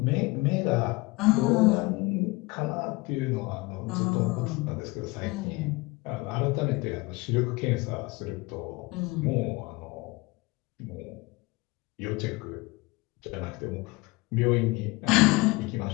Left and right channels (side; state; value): right; quieter; 23.3 dB